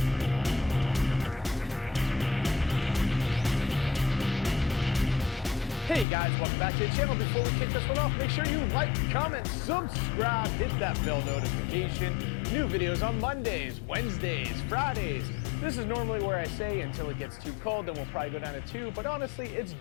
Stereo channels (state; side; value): drops out; right; at 6.1 s